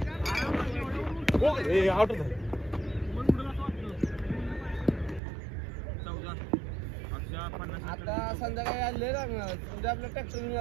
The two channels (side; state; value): left; drops out; at 5.2 s